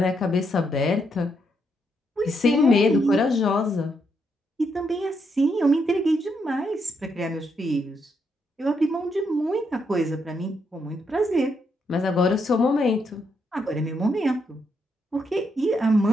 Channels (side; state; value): both; normal; correlation 0.78